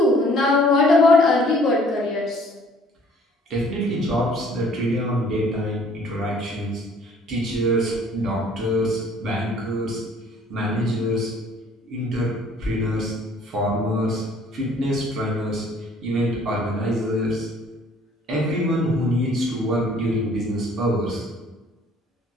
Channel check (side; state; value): both; normal; correlation 0.56